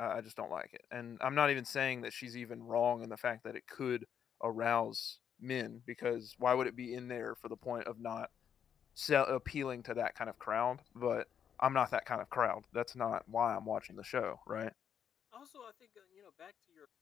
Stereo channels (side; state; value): right; quieter; 8.4 dB